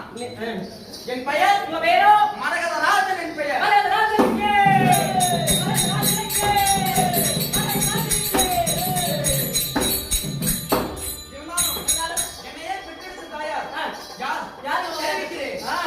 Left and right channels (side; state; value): both; identical; correlation 1.00